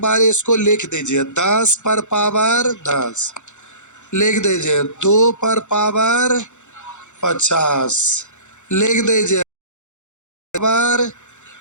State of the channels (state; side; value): late; right; 0.84 ms